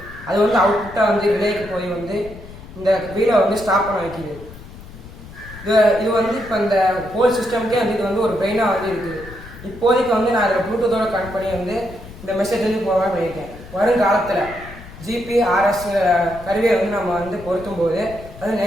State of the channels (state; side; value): noise; left; rumble, 16 dB below the sound